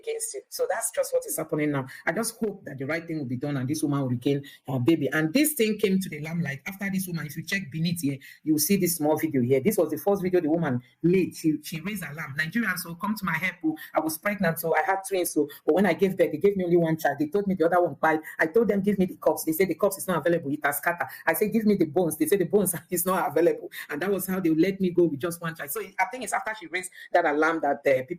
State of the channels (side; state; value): both; identical; correlation 1.00